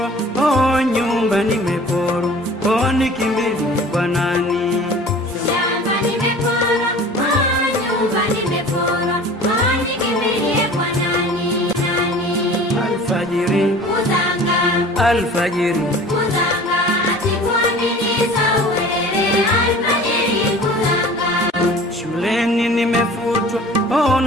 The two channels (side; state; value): both; normal; correlation 0.44